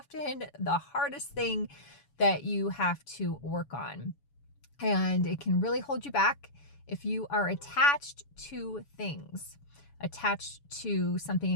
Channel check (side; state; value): right; late; 7.0 ms